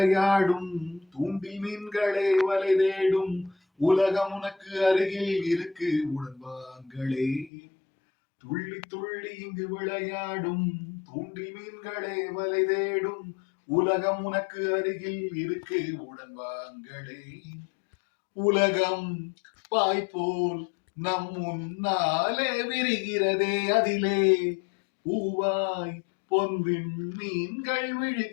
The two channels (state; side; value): drops out; right; at 7.5 s